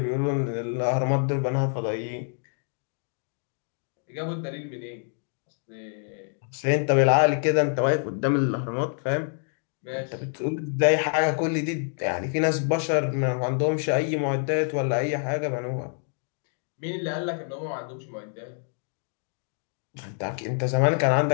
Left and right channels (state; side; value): silent; right; 57 dB below the other